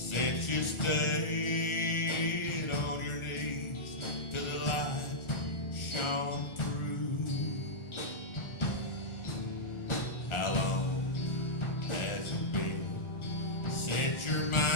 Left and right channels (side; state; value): right; late; 1.4 ms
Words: you stayed on your knees till the light shone through? How long has it been since your